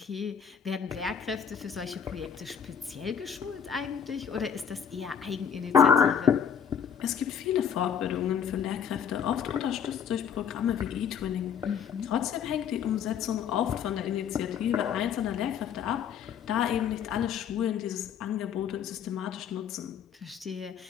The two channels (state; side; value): quieter; right; 7.8 dB